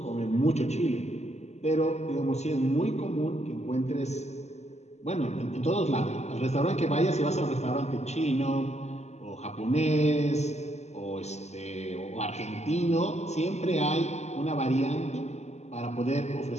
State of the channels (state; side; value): late; right; 0.32 ms